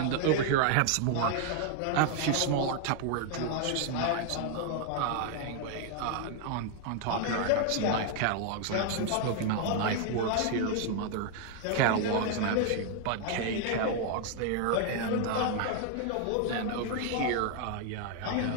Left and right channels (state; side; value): different; both; correlation 0.00